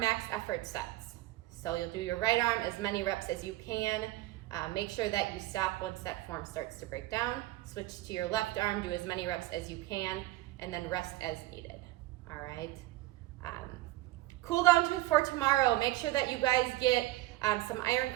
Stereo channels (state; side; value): quieter; left; 17.5 dB